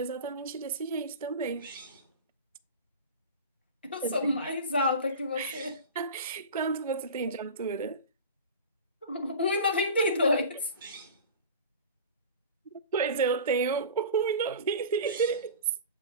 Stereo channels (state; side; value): inverted; both; correlation -0.33